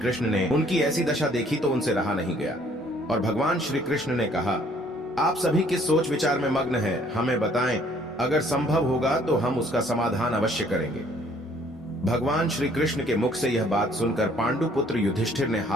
ने उनकी ऐसी दशा देखी तो उनसे रहा नहीं गया और भगवान श्री कृष्ण ने कहा, आप सभी किस सोच विचार में मग्न हैं, हमें बताएं, अगर संभव होगा तो हम उसका समाधान अवश्य करेंगे। भगवान श्री कृष्ण के मुख से यह बात सुनकर पांडुपुत्र युधिष्ठिर ने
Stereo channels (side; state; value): both; normal; correlation 0.60